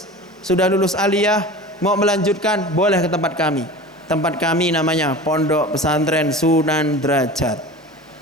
aliyah, mau melanjutkan, boleh ke tempat kami. Tempat kami namanya Pondok Pesantren Sunan Derajat.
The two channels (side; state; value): both; normal; correlation 0.35